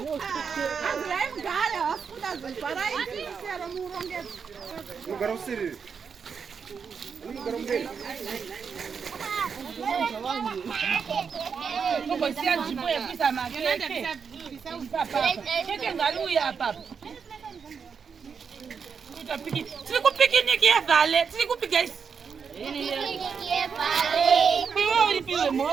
Siku picnic ya vale, siku guys. Ya vale. Piwo piwo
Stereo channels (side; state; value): left; quieter; 6.2 dB